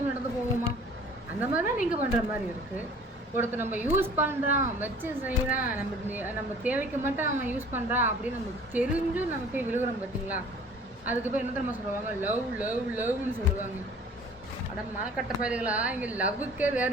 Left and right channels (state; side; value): normal; both; correlation 0.49